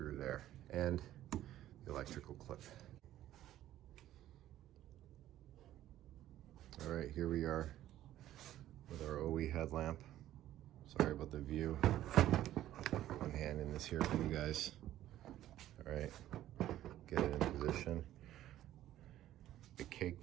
there, and the electrical clip. All right, here we are with our OE headlamp. Sorry about the view. One hand in this here for you guys. All right, get it in position. I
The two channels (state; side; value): quieter; left; 13.2 dB